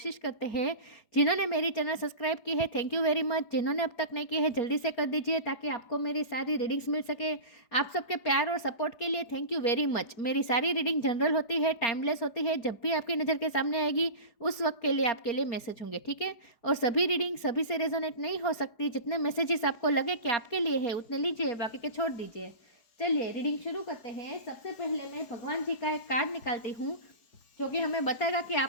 करते हैं। जिन्होंने मेरी चैनल सब्सक्राइब की है, थैंक यू वेरी मच। जिन्होंने अब तक नहीं की है, जल्दी से कर दीजिए ताकि आपको मेरी सारी रीडिंग्स मिल सके। आप सबके प्यार और सपोर्ट के लिए थैंक यू वेरी मच। मेरी सारी रीडिंग जनरल होती है, टाइमलेस होती है। जब भी आपकी नज़र के सामने आएगी उस वक्त के लिए आपके लिए मैसेज होंगे, ठीक है। और सभी रीडिंग सभी से रेजोनेट नहीं हो सकती। जितने मैसेजेस आपको लगे कि आपके लिए है उतने लीजिए, बाकी के छोड़ दीजिए। चलिए रीडिंग शुरू करते हैं। सबसे पहले मैं भगवान जी का एक कार्ड निकालती हूँ जो कि हमें बताएगा कि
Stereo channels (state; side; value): late; right; 4.8 ms